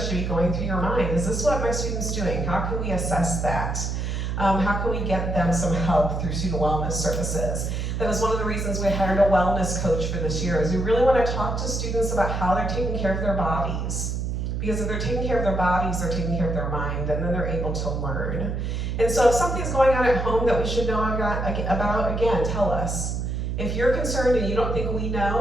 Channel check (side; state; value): right; noise; hum, 2 dB below the sound